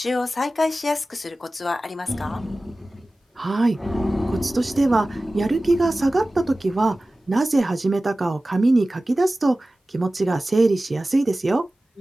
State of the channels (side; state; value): both; normal; correlation 0.96